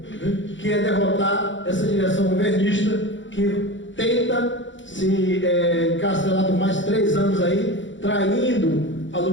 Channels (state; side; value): late; right; 0.55 ms